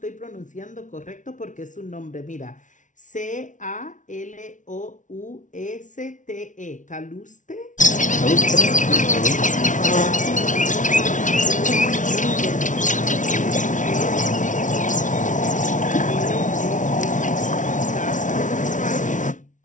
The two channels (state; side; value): late; right; 0.37 ms